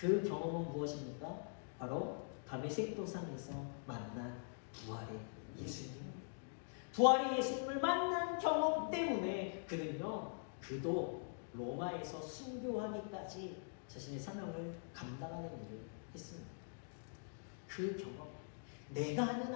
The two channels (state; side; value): silent; right; digital silence